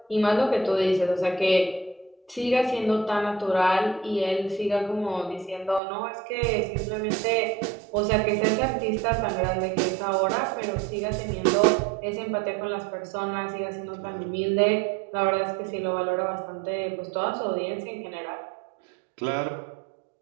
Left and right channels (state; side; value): drops out; left; at 5.8 s